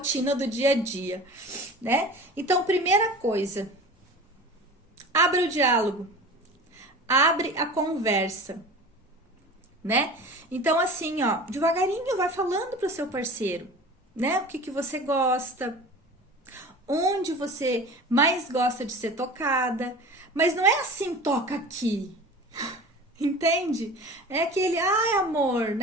do dia a dia, né? Então, primeira coisa, abre o diálogo, abre a conversa, né? Então, assim, ó, devagarinho vai falando pro seu parceiro, né? O que você gosta, onde você mais gosta de ser tocada, mas não é assim, toca aqui. Entende? É aquele, amor,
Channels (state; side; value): normal; both; correlation 0.37